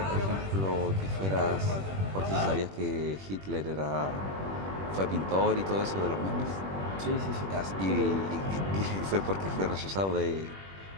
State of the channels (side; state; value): left; late; 21 ms